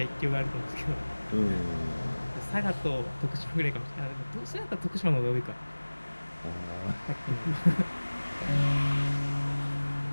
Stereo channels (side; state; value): both; inverted; correlation -1.00